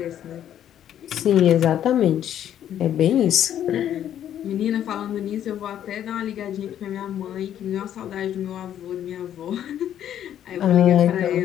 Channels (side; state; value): right; quieter; 10.6 dB